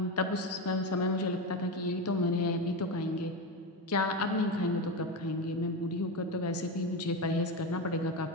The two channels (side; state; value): both; normal; correlation 0.16